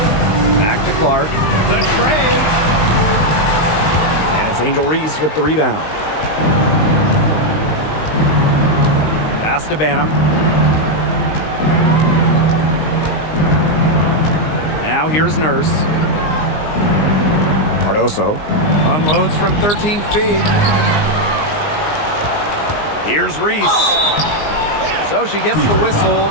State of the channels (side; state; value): right; late; 19 ms